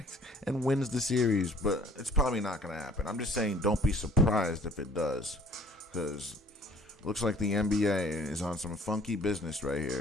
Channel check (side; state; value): both; normal; correlation 0.54